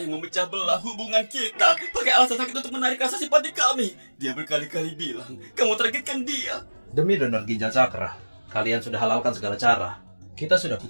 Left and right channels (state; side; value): inverted; both; correlation -1.00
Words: yang memecah belah hubungan kita. Pakai alasan sakit untuk menarik rasa simpati kami. Dia berkali-kali bilang, kamu targetkan dia. Demi donor ginjal Cakra, kalian sudah halalkan segala cara. Kita sudah